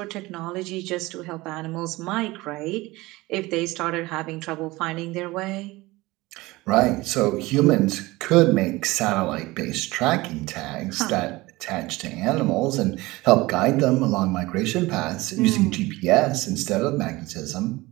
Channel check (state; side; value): quieter; left; 20.6 dB